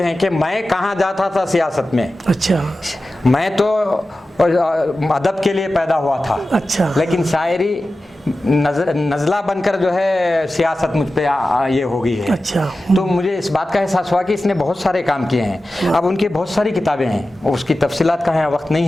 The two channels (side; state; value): both; normal; correlation 0.94